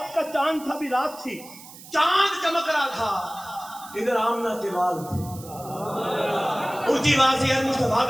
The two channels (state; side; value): noise; right; hiss, 18 dB below the sound